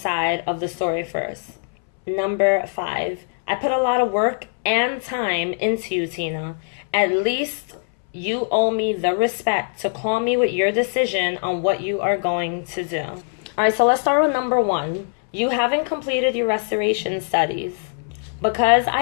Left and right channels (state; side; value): silent; right; 64 dB below the other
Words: of the story first. Number 5, I put a lot of work and time into you, Tina. At least you owe me the respect to call me with your decision on what you are going to do. All right, so let's start with number 1. You haven't completed your restoration studies. Because I